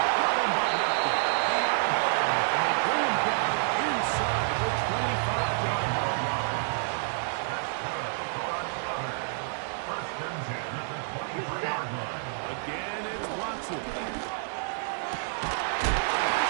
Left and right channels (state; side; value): silent; left; digital silence